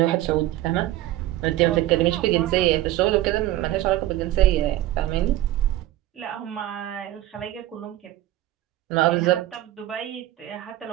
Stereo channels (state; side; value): quieter; left; 14.7 dB